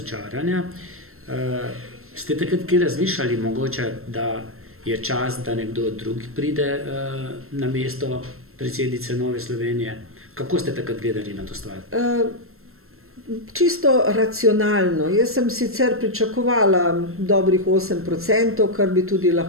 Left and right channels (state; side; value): late; left; 0.62 ms